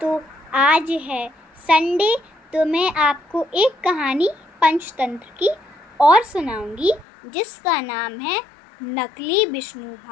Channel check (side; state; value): right; drops out; at 7.1 s